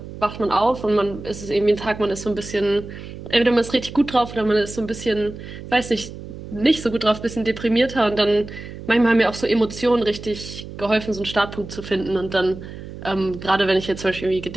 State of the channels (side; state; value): right; noise; hum, 12 dB below the sound